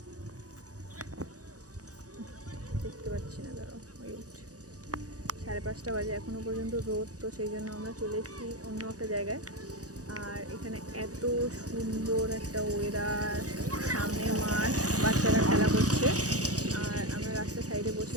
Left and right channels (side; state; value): left; late; 0.67 ms